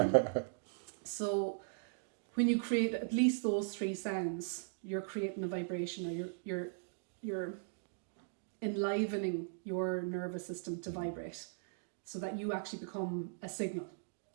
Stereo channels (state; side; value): silent; left; digital silence